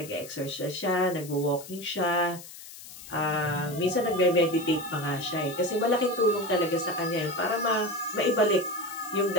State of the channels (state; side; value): noise; left; hiss, 15 dB below the sound